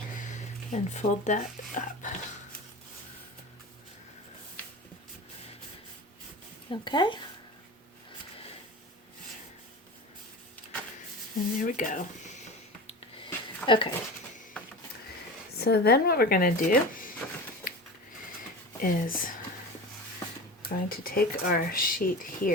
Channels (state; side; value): normal; both; correlation 0.31